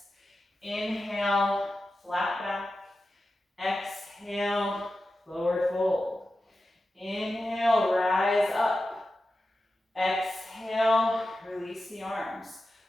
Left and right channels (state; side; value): normal; both; correlation 0.92